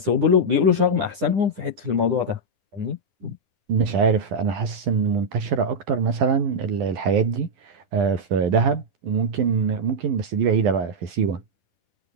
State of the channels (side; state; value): left; late; 10 ms